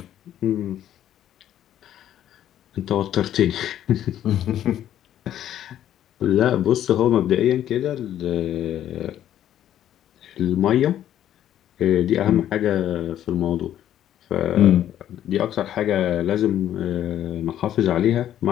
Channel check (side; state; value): right; quieter; 11.3 dB